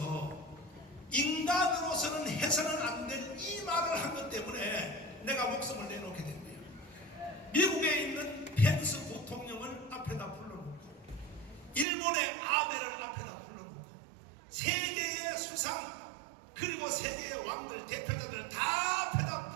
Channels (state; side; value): drops out; left; at 11.9 s